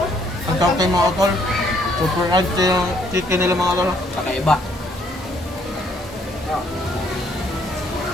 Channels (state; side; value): normal; both; correlation 0.67